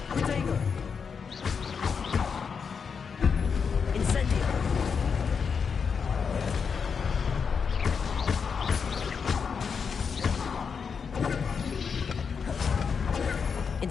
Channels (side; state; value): right; quieter; 6.0 dB